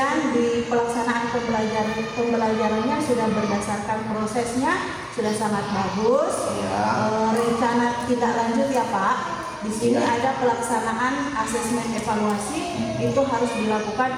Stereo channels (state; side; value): identical; both; correlation 1.00